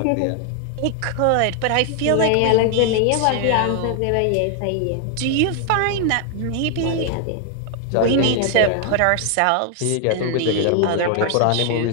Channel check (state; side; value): different; both; correlation 0.00